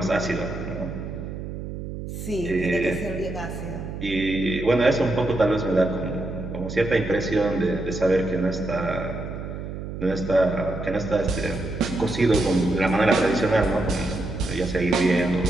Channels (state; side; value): noise; right; hum, 8 dB below the sound